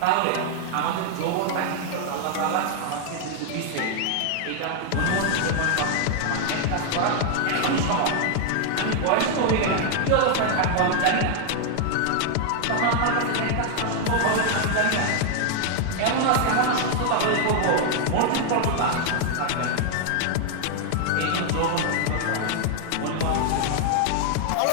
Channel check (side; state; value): both; different; correlation 0.00